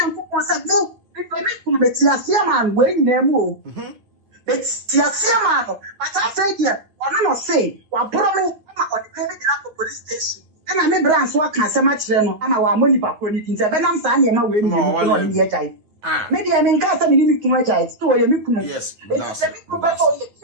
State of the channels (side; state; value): left; late; 9.5 ms